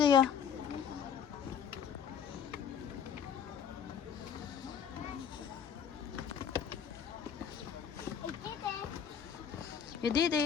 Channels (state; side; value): quieter; right; 7.7 dB